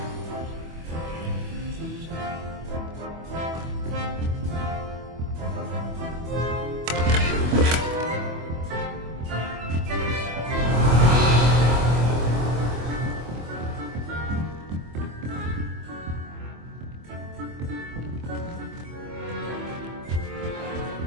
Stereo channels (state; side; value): late; left; 25 ms